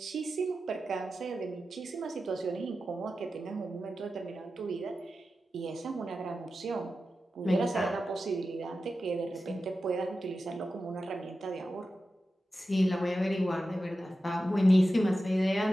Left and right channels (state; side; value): normal; both; correlation 0.92